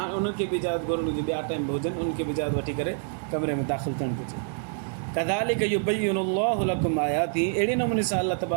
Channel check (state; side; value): silent; left; digital silence